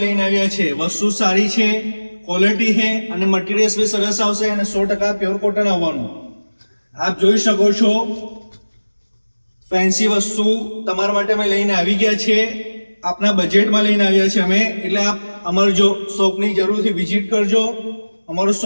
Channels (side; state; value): both; inverted; correlation -1.00